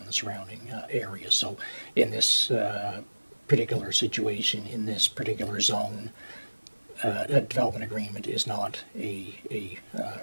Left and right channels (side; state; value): both; inverted; correlation -1.00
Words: the surrounding area. So in this particular situation, in this particular zone, a development agreement is not a